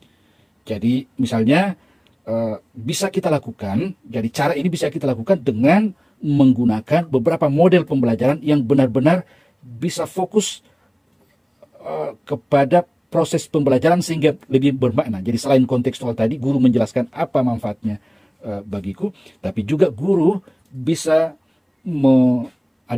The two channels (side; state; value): both; identical; correlation 1.00